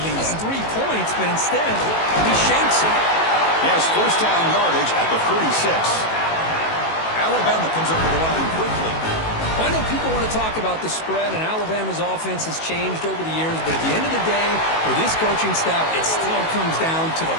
least 3 points, but instead, he shanks it. Yes, 1st down yardage at the 36. Alabama comes up to the line quickly. I know people want to talk about the spread, and Alabama's offense has changed over the years, but at the end of the day, for this coaching staff, it still comes down to the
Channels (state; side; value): late; right; 18 ms